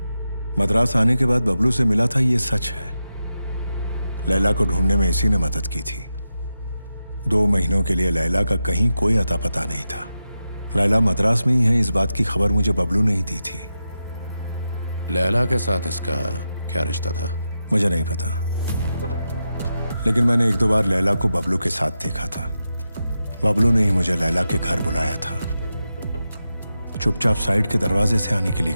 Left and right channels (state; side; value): inverted; both; correlation -0.90